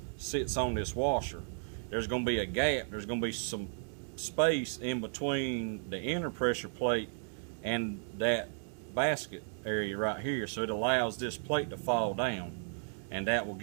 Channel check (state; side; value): silent; left; digital silence